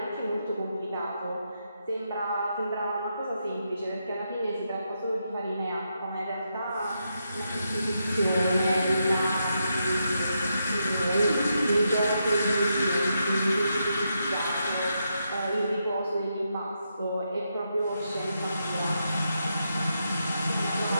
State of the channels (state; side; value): inverted; both; correlation -0.83